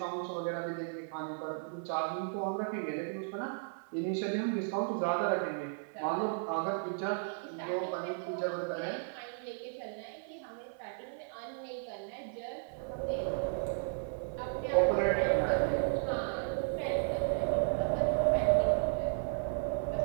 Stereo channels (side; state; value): left; silent; 55 dB below the other